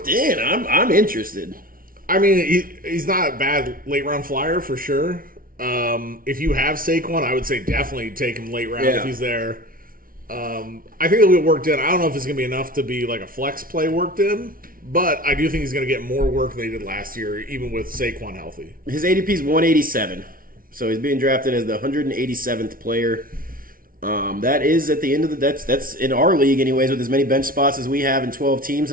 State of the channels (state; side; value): late; left; 0.42 ms